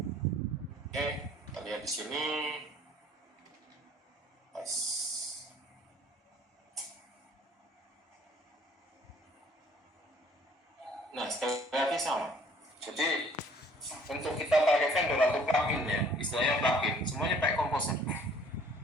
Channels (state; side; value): normal; both; correlation 0.56